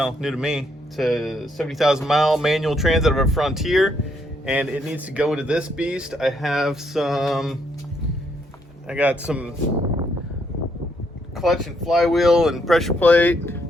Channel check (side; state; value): both; normal; correlation 0.73